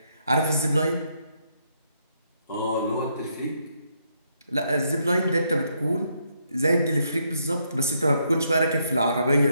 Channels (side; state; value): both; inverted; correlation -0.75